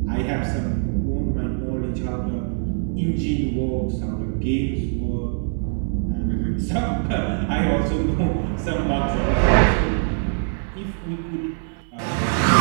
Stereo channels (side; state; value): left; silent; 64 dB below the other